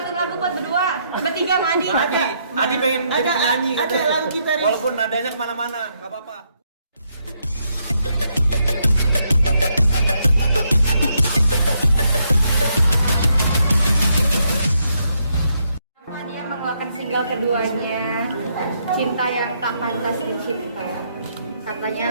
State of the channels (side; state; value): both; inverted; correlation -0.76